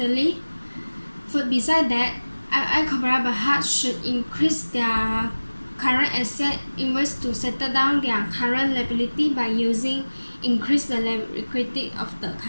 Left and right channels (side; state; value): both; inverted; correlation -1.00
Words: For beside that, IOI Corporation Berhad should increase their current asset invest to settle down their current liability by using increase the liquidity of the